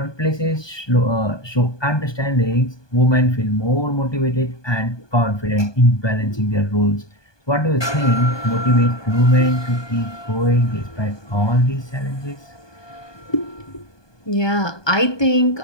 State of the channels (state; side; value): late; right; 1.2 ms